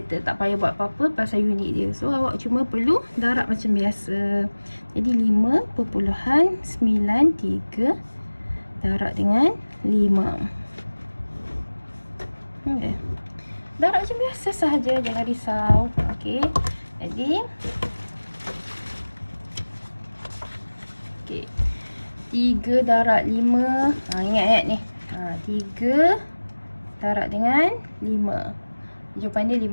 tak payah buat apa-apa pasal unit dia. So awak cuma perlu darab macam biasa. Jadi 5.93 darab dengan 5. Okay. Darab macam biasa sahaja, jangan risau. Okey. Jadi okey, 3 darab 5. Ingat ni. 3 darab dengan 5. Jawapan dia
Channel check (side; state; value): both; inverted; correlation -1.00